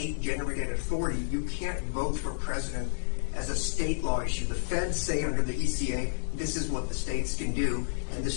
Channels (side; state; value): right; silent; digital silence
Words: authority. You can't vote for president as a state law issue. The feds say under the ECA, this is what the states can do, and the